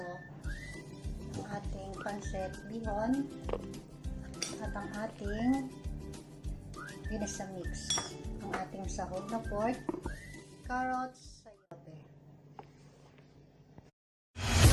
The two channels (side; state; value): both; identical; correlation 1.00